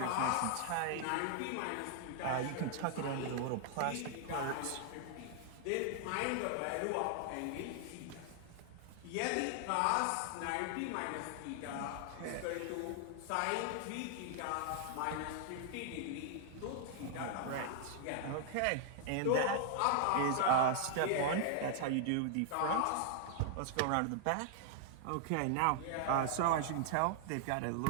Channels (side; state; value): both; different; correlation 0.00